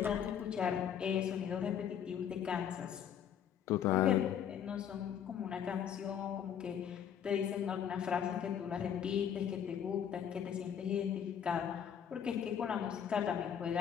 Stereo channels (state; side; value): quieter; right; 8.7 dB